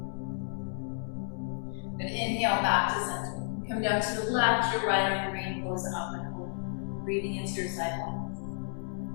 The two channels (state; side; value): silent; right; 57 dB below the other